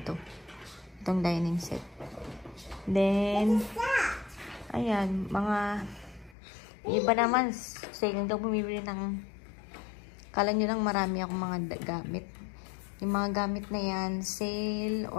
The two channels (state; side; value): drops out; right; at 6.4 s